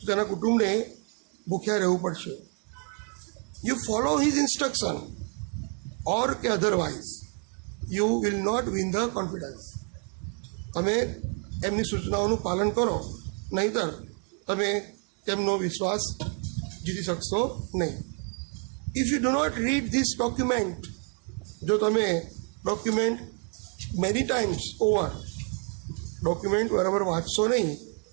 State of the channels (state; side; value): quieter; left; 40.0 dB